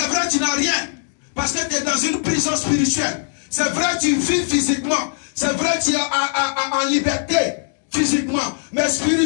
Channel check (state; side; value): silent; right; digital silence